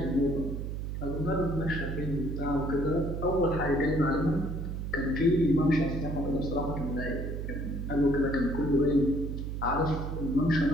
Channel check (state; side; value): noise; right; hum, 4 dB below the sound